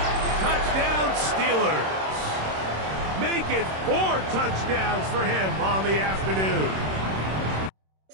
Touchdown Steelers. Make it 4 touchdowns for him on the afternoon.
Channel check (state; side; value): late; left; 26 ms